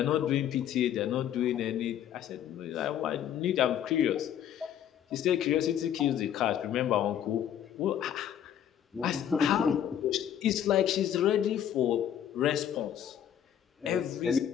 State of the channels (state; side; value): quieter; right; 9.9 dB